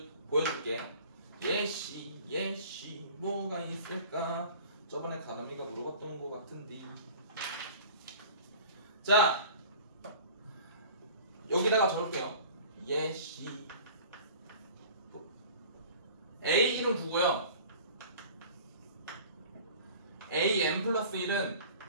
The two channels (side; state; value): both; inverted; correlation -0.44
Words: 보여줄게. 예시 뭐가 있을까? 저번에 가람이가 물어봤던 것 같은데. 자, 여기다가 적을게요. 예시 A1은 9고요 AN 플러스 1은